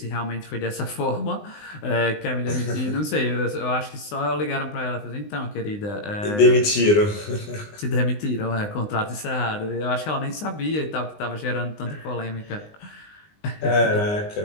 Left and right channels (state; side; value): late; right; 19 ms